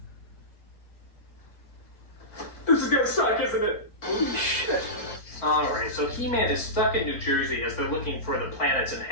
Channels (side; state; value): right; late; 4.4 ms